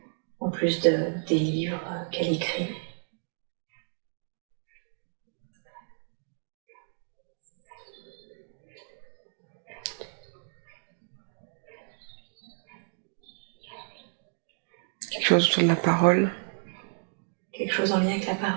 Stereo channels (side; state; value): left; silent; 57 dB below the other